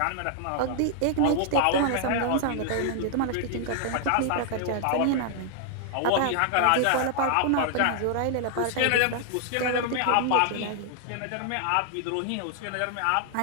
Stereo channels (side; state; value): both; different; correlation 0.00